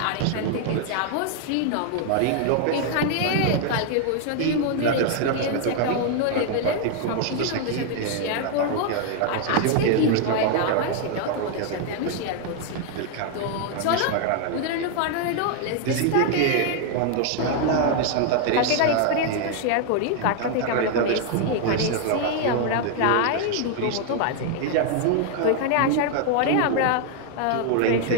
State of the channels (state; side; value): different; both; correlation 0.00